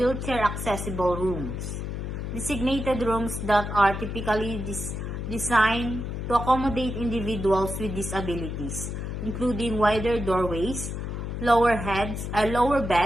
accessible rooms. Designated rooms that are typically designed to accommodate individuals with disabilities, including wider doorways, lower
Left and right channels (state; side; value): noise; left; hum, 5 dB below the sound